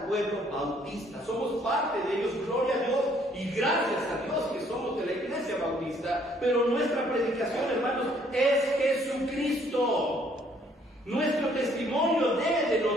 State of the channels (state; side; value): normal; both; correlation 0.64